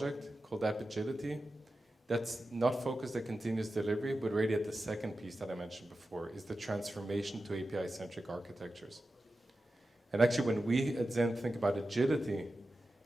called App Agility. That's not focused at continuous delivery, but really at the second piece that I mentioned before, is the transformation to API-centric architectures. And actually, when we at Zen think about agility,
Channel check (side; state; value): both; normal; correlation 0.92